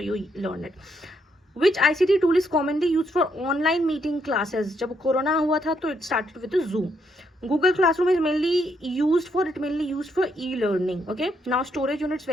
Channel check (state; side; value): normal; both; correlation 0.75